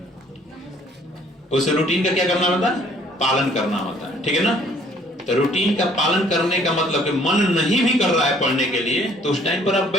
उस रूटीन का क्या करना होता है, पालन करना होता है, ठीक है ना। तो रूटीन का पालन करने का मतलब कि मन नहीं भी कर रहा है पढ़ने के लिए, तो उस टाइम पर आप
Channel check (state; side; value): normal; both; correlation 0.59